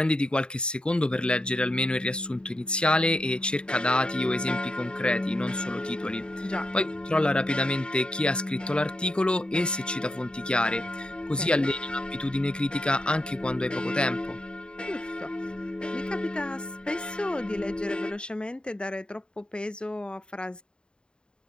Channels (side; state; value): right; late; 0.051 ms